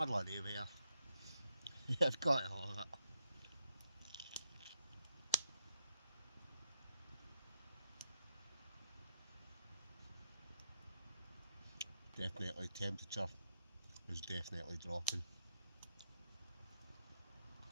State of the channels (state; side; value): inverted; both; correlation -0.77